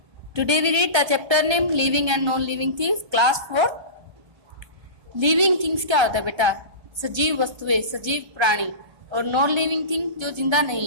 Today we read the chapter name living and non-living things, class 4. Living things क्या होता है बेटा? सजीव वस्तुएं, सजीव प्राणी, और नॉन लिविंग थिंग जो जिंदा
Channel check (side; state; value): left; late; 1.3 ms